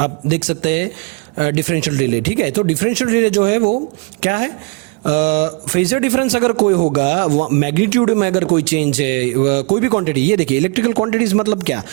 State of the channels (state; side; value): quieter; left; 31.6 dB